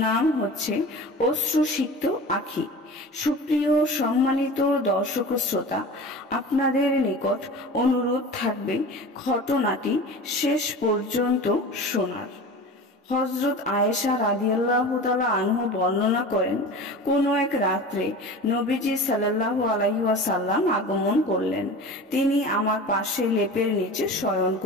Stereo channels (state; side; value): normal; both; correlation 0.35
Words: হচ্ছে অশ্রুসিক্ত আঁখি। সুপ্রিয় সম্মানিত দর্শক ও শ্রোতা, আপনাদের নিকট অনুরোধ থাকবে ঘটনাটি শেষ পর্যন্ত শোনার। হযরত আয়েশা রাদিয়াল্লাহু তাআলা আনহু বর্ণনা করেন, কোন এক রাত্রে নবীজি সাল্লাল্লাহু আলাইহি ওয়াসাল্লাম আগমন করলেন। তিনি আমার পাশে লেপের নিচে শয়ন